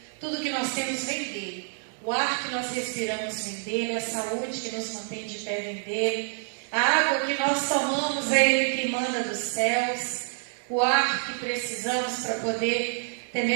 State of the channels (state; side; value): silent; left; 60 dB below the other